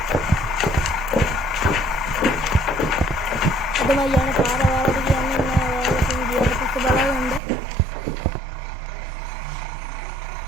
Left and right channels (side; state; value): left; drops out; at 7.4 s